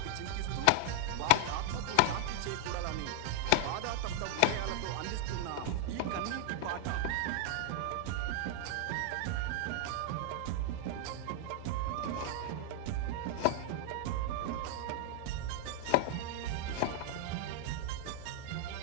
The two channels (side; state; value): both; different; correlation -0.01